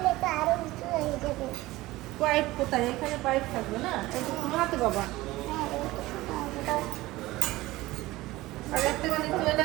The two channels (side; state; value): left; quieter; 18.5 dB